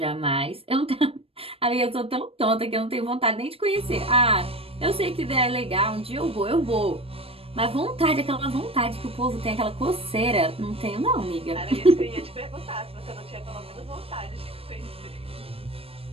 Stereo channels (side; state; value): left; late; 0.28 ms